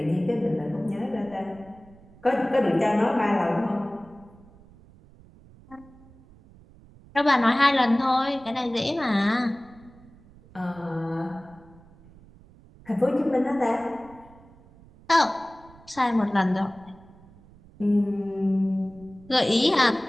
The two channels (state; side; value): noise; right; rumble, 24 dB below the sound